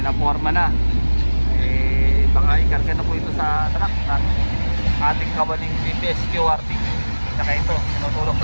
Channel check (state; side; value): inverted; both; correlation -1.00